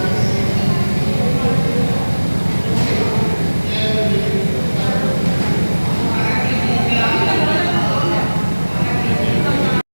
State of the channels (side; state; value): both; inverted; correlation -1.00